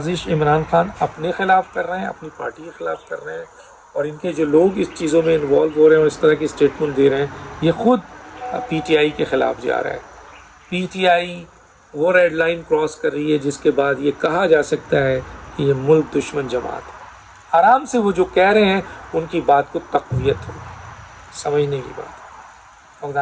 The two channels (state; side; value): identical; both; correlation 1.00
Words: عمران خان اپنے خلاف کر رہے ہیں، اپنی پارٹی کے خلاف کر رہے ہیں، اور ان کے جو لوگ اس چیزوں میں انوالو ہو رہے ہیں اور اس طرح کی اسٹیٹمنٹ دے رہے ہیں، یہ خود PTI کے خلاف جا رہا ہے۔ PTI وہ ریڈ لائن کراس کر رہی ہے جس کے بعد یہ کہا جا سکتا ہے کہ یہ ملک دشمن جماعت ہے۔ آرام سے وہ جو کہہ رہے ہیں ان کی بات کو تقویت ہوگی، سمجھنے کی بات۔ اور